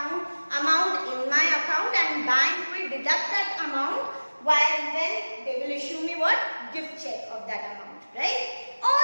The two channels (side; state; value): both; inverted; correlation -1.00